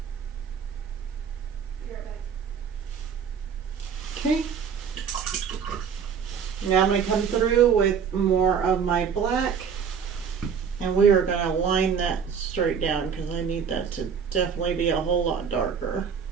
Okay. Now I'm going to come through with more of my black, and we are going to line that straight down because I need that to definitely be a whole lot darker.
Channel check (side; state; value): left; quieter; 6.9 dB